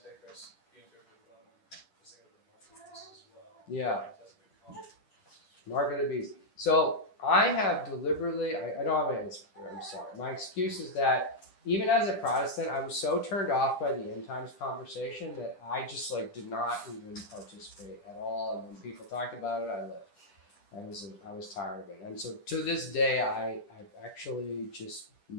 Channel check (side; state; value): right; late; 10 ms